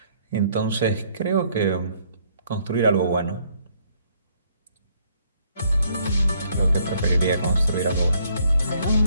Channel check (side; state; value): both; inverted; correlation -0.67